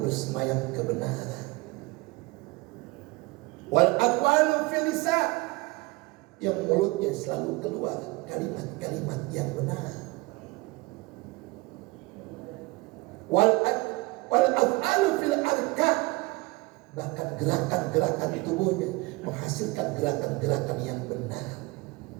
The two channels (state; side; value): quieter; left; 23.7 dB